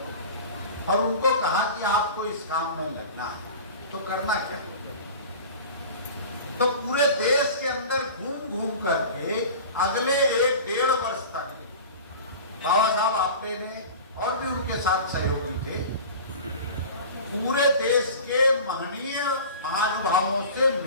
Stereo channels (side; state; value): both; inverted; correlation -0.37